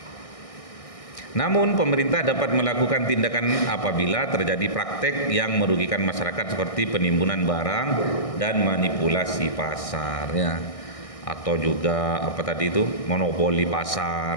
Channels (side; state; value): right; late; 1.6 ms